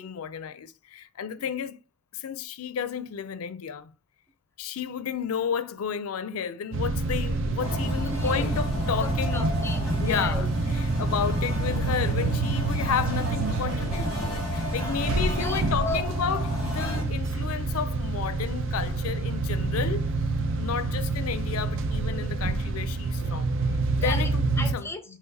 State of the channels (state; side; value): normal; both; correlation 0.43